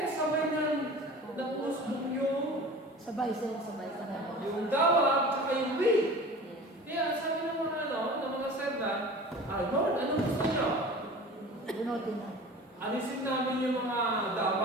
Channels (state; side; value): normal; both; correlation 0.39